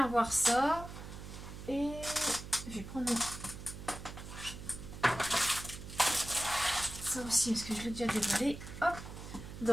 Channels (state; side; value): noise; right; hum, 11 dB below the sound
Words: voir ça et je vais prendre ça aussi parce que je l'ai déjà déballé. Hop,